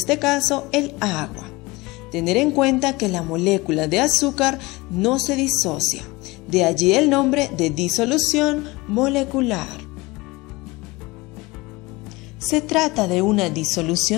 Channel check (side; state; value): right; quieter; 22.3 dB